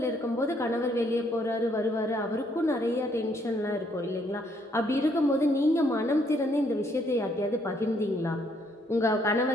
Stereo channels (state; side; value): normal; both; correlation 0.69